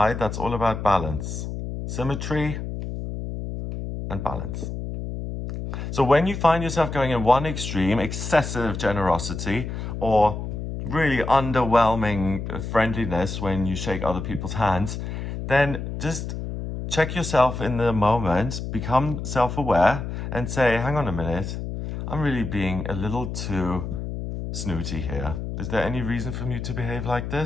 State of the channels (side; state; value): left; noise; hum, 6 dB below the sound